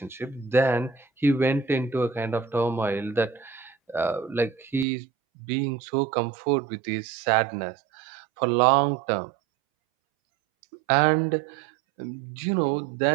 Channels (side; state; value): left; drops out; at 4.9 s